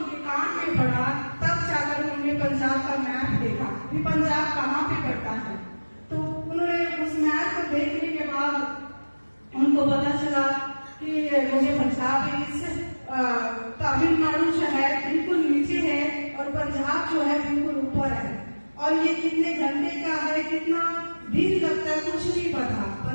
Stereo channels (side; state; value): both; inverted; correlation -1.00